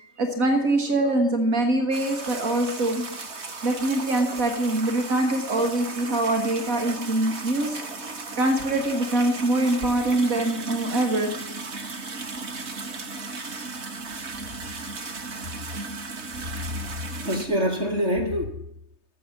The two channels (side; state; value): left; late; 3.2 ms